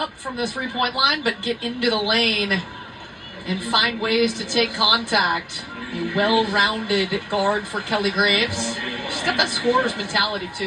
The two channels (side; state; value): both; identical; correlation 1.00